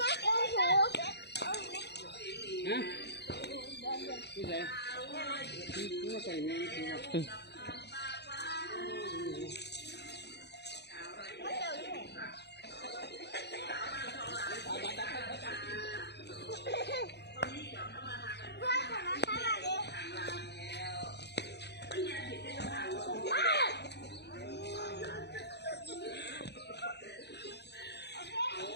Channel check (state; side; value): late; right; 0.49 ms